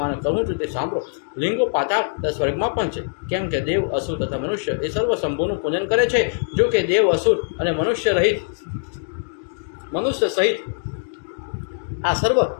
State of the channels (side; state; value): right; silent; digital silence